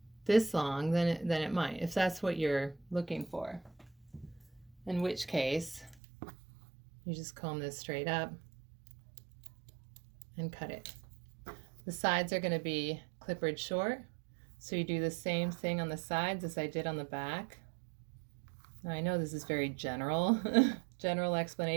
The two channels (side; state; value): left; drops out; at 6.0 s